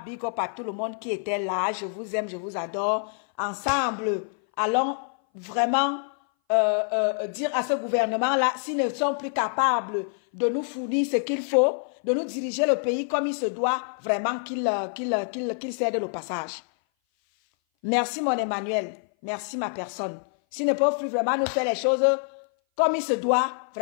big up à tout le monde qui était là. Je vous aime, je vous adore. Ensemble, allons vraiment dire à ce gouvernement-là, s'ils ne sont plus capables de nous fournir ce qu'il faut, de nous diriger le pays comme il se doit, vraiment qu'il cède le passage. Merci mon Emmanuel, merci ma personne. S'ils ne peuvent plus vraiment nous faire les choses comme il se doit,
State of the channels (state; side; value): silent; right; 58 dB below the other